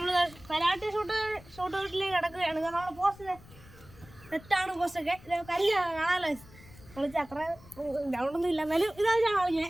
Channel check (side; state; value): left; noise; rumble, 21 dB below the sound